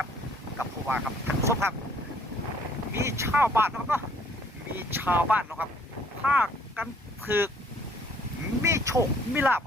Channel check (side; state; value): both; normal; correlation 0.61